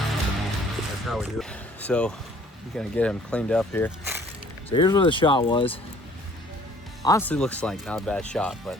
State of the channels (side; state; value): both; normal; correlation 0.56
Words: So we're gonna get him cleaned up here. So here's where the shot was. Honestly looks like not a bad shot, but